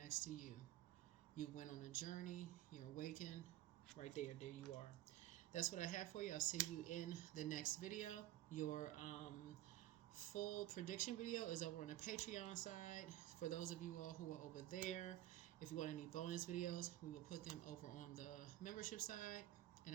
to you. You went on a journey, you're awakened, right there, there you are. That's what I have for you. I'll see you in the next video. Your full prediction video is over on the Patreon side. For those of you all who are over there, if you want any bonus videos, we will put them over on the membership side. And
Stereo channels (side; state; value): left; quieter; 14.3 dB